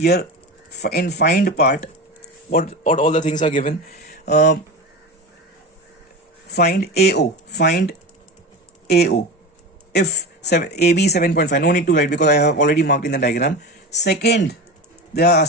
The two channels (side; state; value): both; normal; correlation 0.25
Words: in find part, what all the things are given. Find AO, find AO. If AB is 7.5, no need to write because I have already marked in the diagram. Second, they are